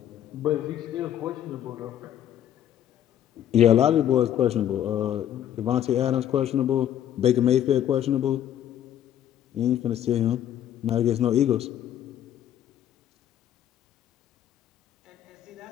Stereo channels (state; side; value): quieter; right; 10.9 dB